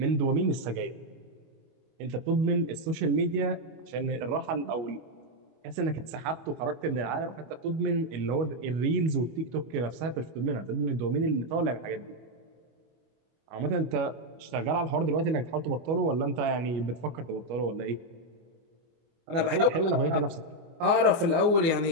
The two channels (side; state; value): left; late; 24 ms